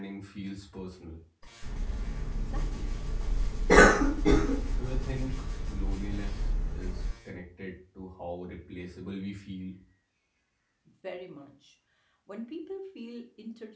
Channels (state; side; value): identical; both; correlation 1.00